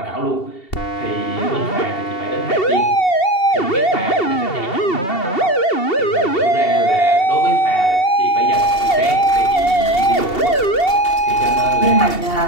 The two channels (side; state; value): right; late; 2.7 ms